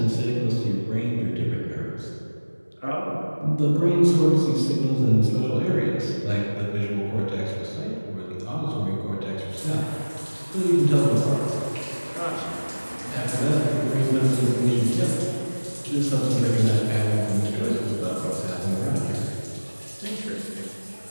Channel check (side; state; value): both; inverted; correlation -1.00